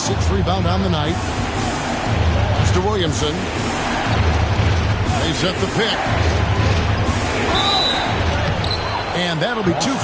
rebound on the night. To Williamson. They set the pick. And that'll be 2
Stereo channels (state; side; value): identical; both; correlation 1.00